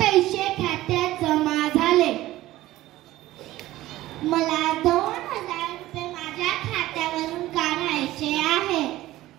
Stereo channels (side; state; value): left; quieter; 16.1 dB